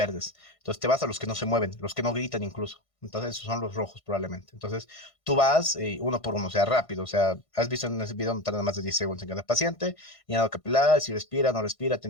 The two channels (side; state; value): right; late; 1.6 ms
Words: Entonces te vas a los que no se mueven, los que no gritan incluso. Entonces esos son los rojos probablemente. Entonces tú vas uno por uno, o sea, rápido. O sea, has visto en ese video no tarda más de 10 segundos en cada paciente. Llenado capilar, si respira, no respira,